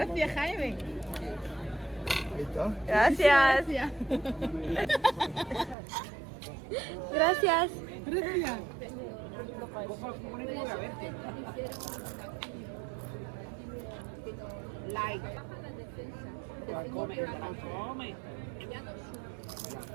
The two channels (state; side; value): drops out; left; at 5.8 s